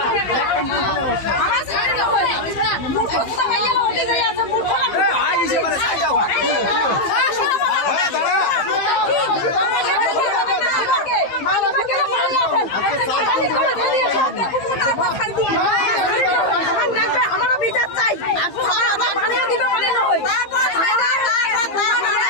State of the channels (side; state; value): right; late; 15 ms